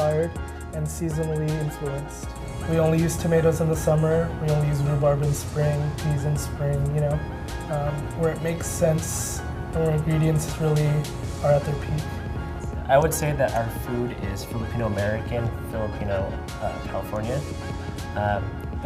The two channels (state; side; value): identical; both; correlation 1.00